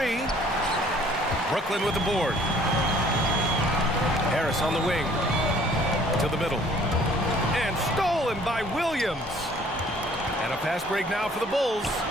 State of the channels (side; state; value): both; normal; correlation 0.56